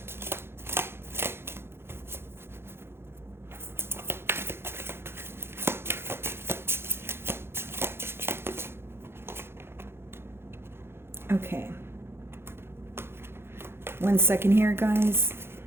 Okay. 1 second here, guys.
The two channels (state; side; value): late; left; 0.11 ms